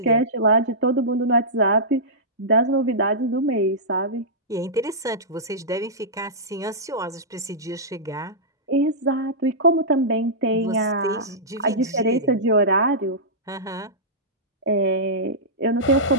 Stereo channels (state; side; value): normal; both; correlation -0.16